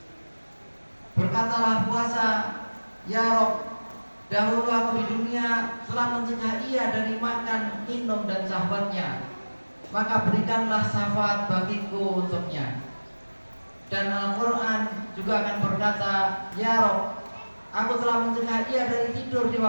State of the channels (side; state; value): both; inverted; correlation -1.00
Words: Berkatalah puasa, "Ya Rob, dahulu aku di dunia telah mencegah ia dari makan, minum dan sahabatnya, maka berikanlah syafaat bagiku untuknya." Dan Al-Quran juga akan berkata, "Ya Rob, aku telah mencegah ia dari tidur di